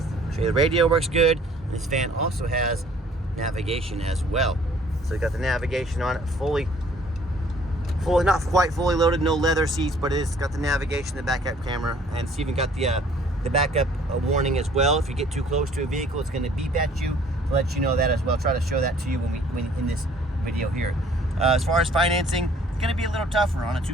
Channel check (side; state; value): both; normal; correlation 0.56